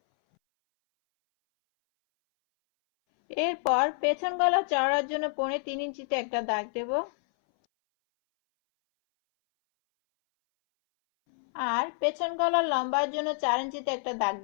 এরপর পেছন গলা চওড়ার জন্য 3.25 ইঞ্চিতে একটা দাগ দেব আর পেছন গলার লম্বার জন্য 4 ইঞ্চিতে একটা দাগ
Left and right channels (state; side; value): silent; right; 59 dB below the other